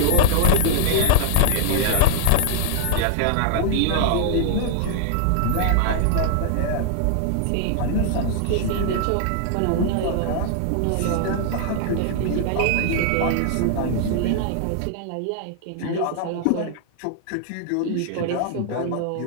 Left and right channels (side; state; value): both; different; correlation -0.01